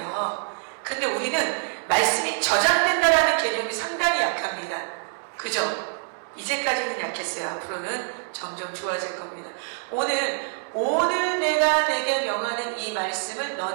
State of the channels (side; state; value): left; silent; 60 dB below the other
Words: 근데 우리는 말씀이 저장된다라는 개념이 상당히 약합니다. 그죠? 이제까지는 약했어요. 앞으로는 점점 좋아질 겁니다. 오늘 내가 내게 명하는 이 말씀을